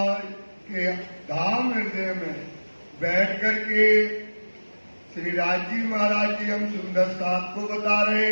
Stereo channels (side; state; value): both; inverted; correlation -1.00